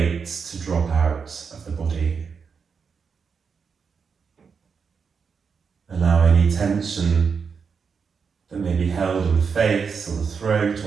to drop out of the body. Allow any tension that may be held in the face or the throat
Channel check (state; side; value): quieter; left; 5.9 dB